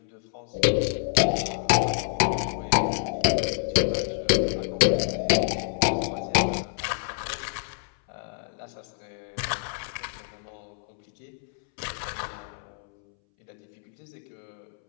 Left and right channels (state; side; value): silent; right; 60 dB below the other